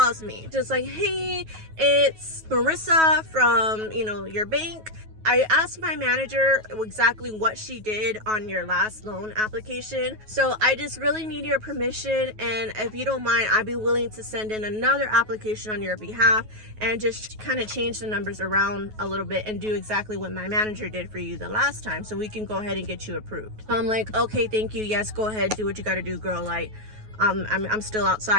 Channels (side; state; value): left; late; 9.3 ms